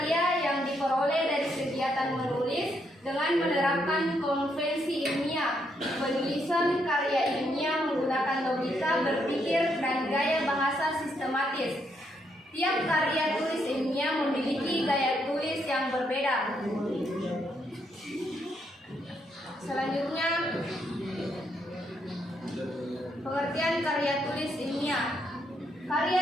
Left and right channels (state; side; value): normal; both; correlation 0.76